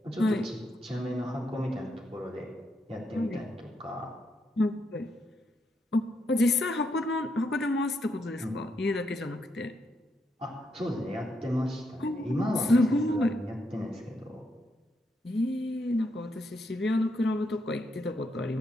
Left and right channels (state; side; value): normal; both; correlation 0.79